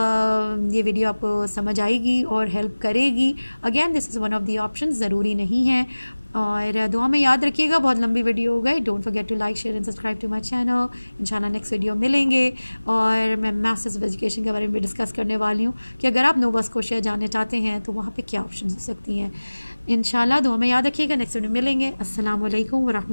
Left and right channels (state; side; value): inverted; both; correlation -1.00